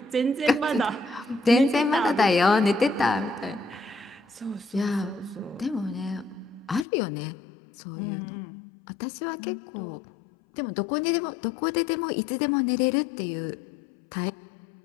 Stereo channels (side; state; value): right; drops out; at 6.9 s